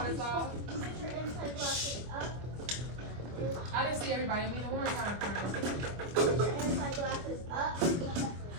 us off. I didn't see everybody. One more time, friend.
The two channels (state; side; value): late; left; 25 ms